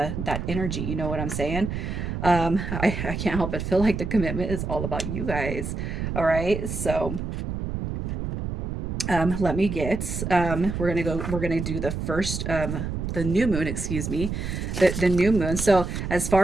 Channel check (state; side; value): noise; right; rumble, 4 dB below the sound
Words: energy. You know what I'm saying? I can't help but feel like the commitment is all about you guys. All right, so let me get, we're gonna do the first, the new moon, excuse me, the new moon. So as